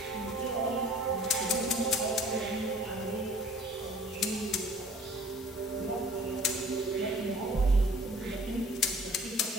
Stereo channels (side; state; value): both; normal; correlation 0.51